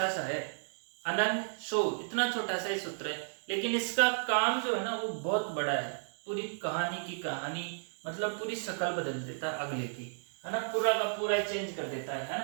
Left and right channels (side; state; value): left; silent; 56 dB below the other